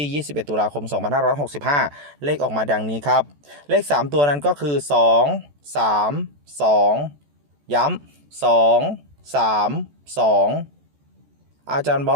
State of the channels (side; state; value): left; late; 14 ms